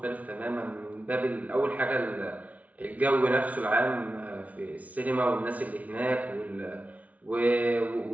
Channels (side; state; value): left; late; 0.070 ms